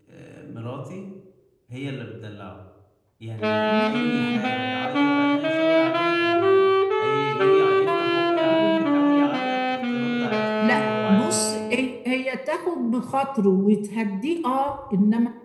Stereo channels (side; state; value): both; identical; correlation 1.00